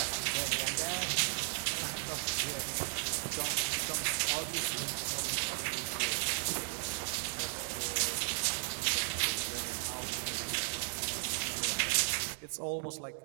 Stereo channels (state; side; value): silent; left; 54 dB below the other